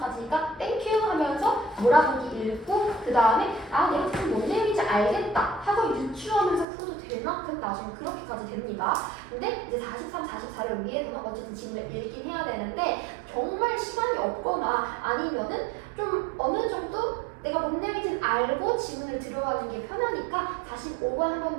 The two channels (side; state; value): left; drops out; at 6.7 s